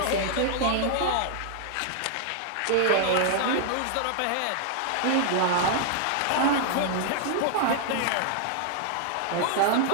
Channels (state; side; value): different; both; correlation -0.01